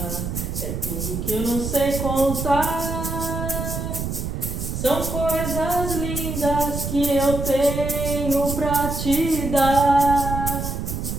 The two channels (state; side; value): noise; right; rumble, 4 dB below the sound